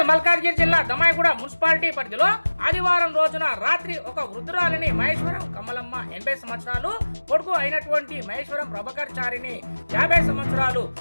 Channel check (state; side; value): inverted; both; correlation -1.00